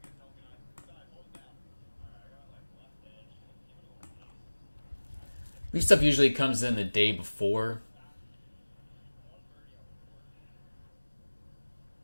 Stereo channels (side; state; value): both; inverted; correlation -1.00